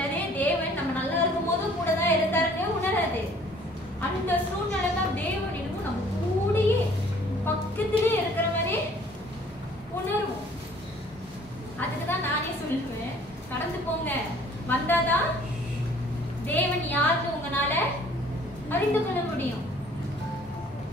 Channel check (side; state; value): both; normal; correlation 0.55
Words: தேவன் நம்ம நல்லா இருக்கும் போது கூட தான் இருந்தாருன்னு உணராது. அந்த சூழ்நிலை தான் தேவன் என்னமோ நம்ம கூடயே பக்கத்திலே இருக்கிற மாதிரி உணர்வோம். அதுக்குதான் நானே சொல்லுவேன், கடந்து போங்க, வந்தாதான் தேவன் யாருன்னு உங்களால அறிந்து கொள்ள முடியும்.